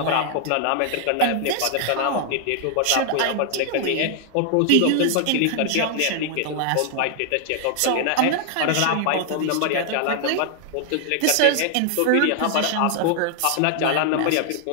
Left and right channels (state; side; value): different; both; correlation 0.00